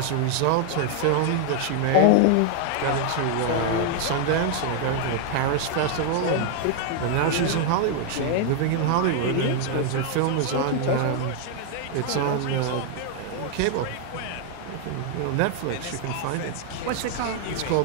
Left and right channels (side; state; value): both; different; correlation 0.00